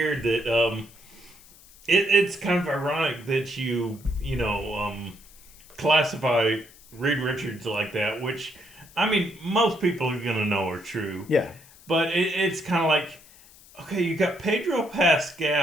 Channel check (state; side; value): noise; left; hiss, 24 dB below the sound